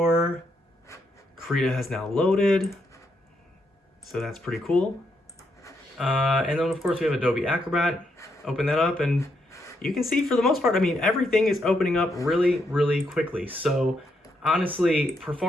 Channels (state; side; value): normal; both; correlation 0.78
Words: Krita has now loaded. So that's pretty cool. And then, of course, we have Adobe Acrobat. Open that up, and you can see, for the most part, I mean, everything is opening up really, really quickly. So honestly,